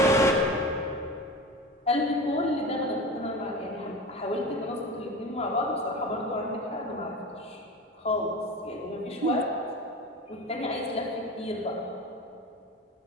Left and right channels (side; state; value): both; normal; correlation 0.30